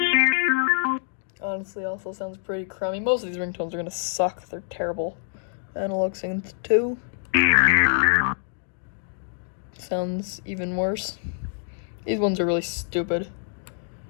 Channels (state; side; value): silent; right; digital silence